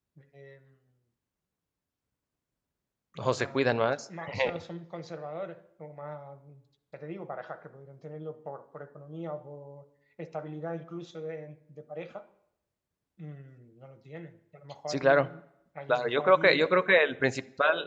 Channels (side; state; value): both; identical; correlation 1.00